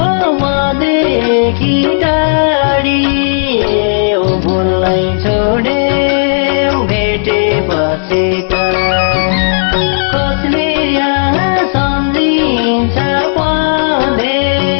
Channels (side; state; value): right; silent; digital silence